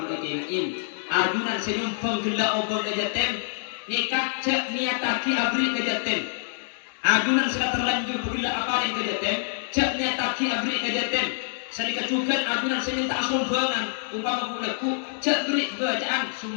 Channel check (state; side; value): silent; right; digital silence